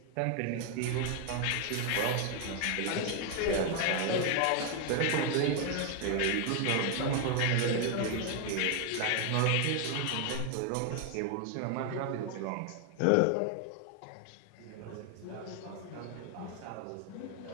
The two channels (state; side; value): different; both; correlation 0.01